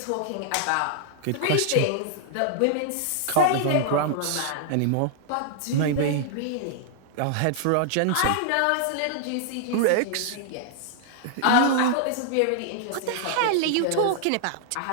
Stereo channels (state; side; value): different; both; correlation -0.01